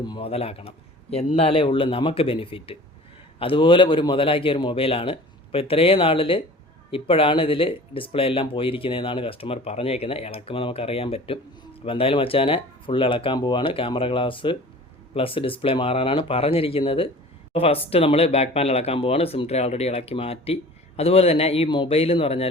മുതലാക്കണം, എന്നാലേ ഉള്ളൂ നമുക്ക് ബെനിഫിറ്റ്. അതുപോലെ ഒരു മുതലാക്കിയ ഒരു മൊബൈലാണ്. അപ്പോൾ ഇത്രയും നാളിൽ ഇപ്പോഴാണ് ഇതിൽ ഡിസ്പ്ലേ എല്ലാം പോയിരിക്കുന്നതെന്നാണ് കസ്റ്റമർ പറഞ്ഞേക്കുന്നത്. ഇളക്കുമ്പോൾ നമുക്കറിയാൻ പറ്റും. അപ്പോൾ എന്തായാലും മച്ചാനെ ഫുൾ ഇളക്കാൻ പോവാണ്. ക്യാമറ ഗ്ലാസ് പ്ലസ് ഡിസ്പ്ലേ മാറാനാണ് പറഞ്ഞിരിക്കുന്നത്. അപ്പോൾ ഫസ്റ്റ് നമ്മൾ ബാക്ക് പാനൽ ഇളക്കാൻ പോവാണ്. സിം ട്രേ ഓൾറെഡി ഇളക്കി മാറ്റി. അതുപോലെ തന്നെ ഈ മൊബൈൽ എന്ന് പറഞ്ഞാൽ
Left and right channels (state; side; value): normal; both; correlation 0.43